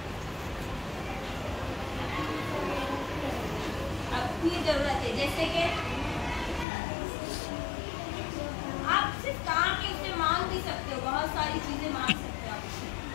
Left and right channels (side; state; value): right; drops out; at 6.7 s